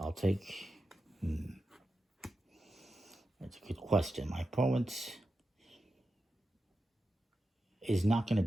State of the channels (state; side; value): normal; both; correlation 0.90